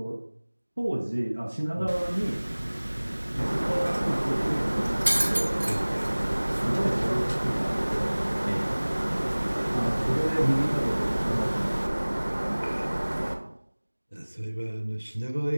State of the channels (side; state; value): both; inverted; correlation -1.00